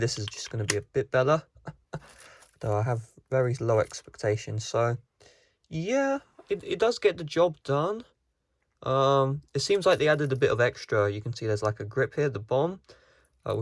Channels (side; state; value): both; identical; correlation 1.00